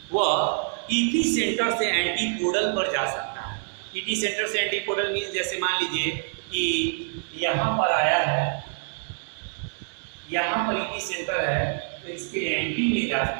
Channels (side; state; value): left; silent; 61 dB below the other